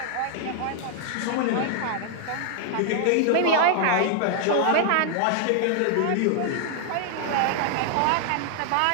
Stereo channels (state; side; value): different; both; correlation 0.00